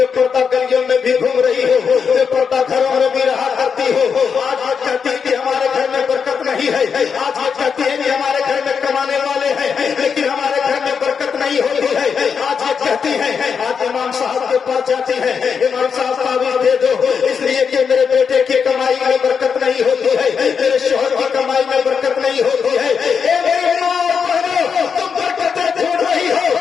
پردہ گلیوں میں بھی گھوم رہی ہو، بے پردہ گھروں میں بھی رہا کرتی ہو، آج یہ کہتی ہے کہ ہمارے گھر میں برکت نہیں ہے، آج یہ کہتی ہے کہ ہمارے گھر میں کمانے والے ہیں لیکن ہمارے گھر میں برکت نہیں ہوتی ہے، آج ये कहती है, आज इमाम साहब के पास जाती है, इमाम साहब तावीज़ दे दो, इसलिए कि मेरे बेटे की कमाई में बरकत नहीं होती है, मेरे शोहर की कमाई में बरकत नहीं होती है। ए मेरे माँ और बहनों, तुम बरकतें ढूंढ रही हो,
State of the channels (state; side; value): quieter; right; 6.3 dB